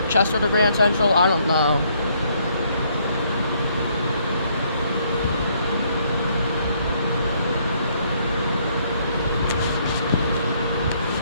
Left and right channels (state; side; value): inverted; both; correlation -0.69